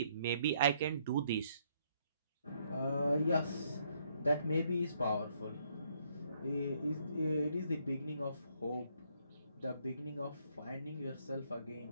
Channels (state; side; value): inverted; both; correlation -0.71